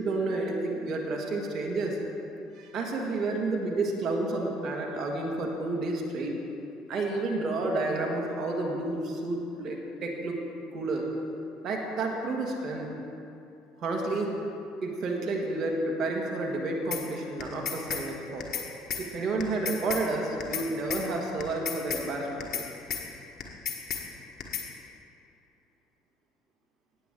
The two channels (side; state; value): both; normal; correlation 0.63